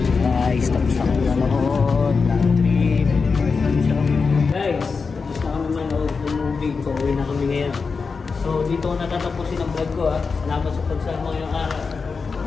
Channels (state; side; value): quieter; right; 4.9 dB